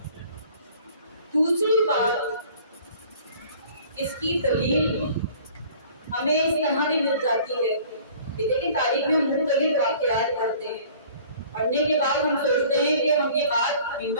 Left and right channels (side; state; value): both; inverted; correlation -0.50